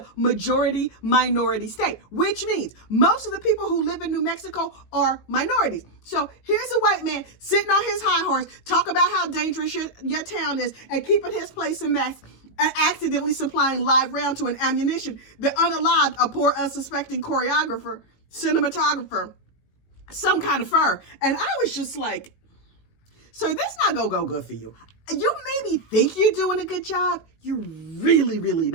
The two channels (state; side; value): late; right; 18 ms